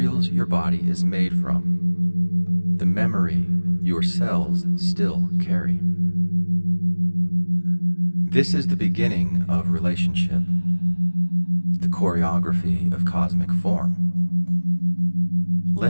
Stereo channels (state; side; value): inverted; both; correlation -1.00